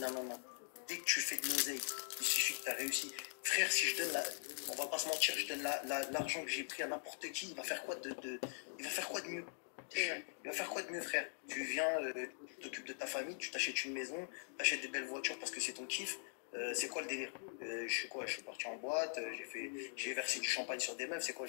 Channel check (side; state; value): right; silent; digital silence